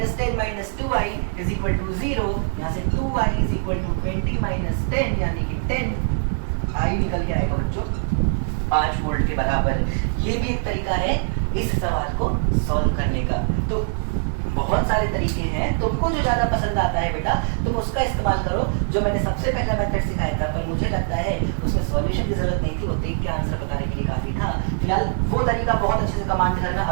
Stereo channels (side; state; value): left; silent; digital silence